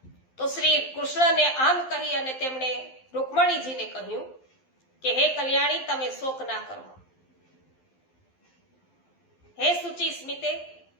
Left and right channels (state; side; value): late; right; 12 ms